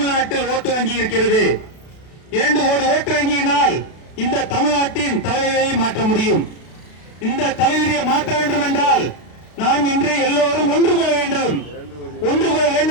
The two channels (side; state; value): right; late; 32 ms